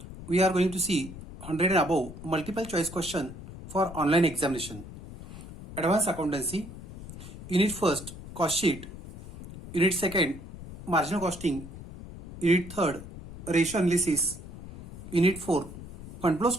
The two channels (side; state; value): left; noise; rumble, 13 dB below the sound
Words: We are going to see 100 and above multiple choice question for online examination. Advanced accountancy, unit first cost sheet, unit second marginal costing, unit third ratio analysis, unit 4 fund flow